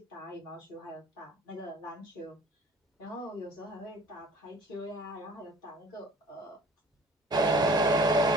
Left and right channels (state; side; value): normal; both; correlation 0.48